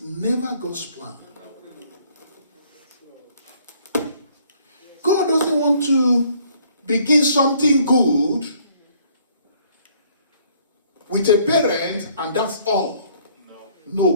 never God's plan. God doesn't want to begin something good with a parent and that's all.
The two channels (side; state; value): both; inverted; correlation -0.61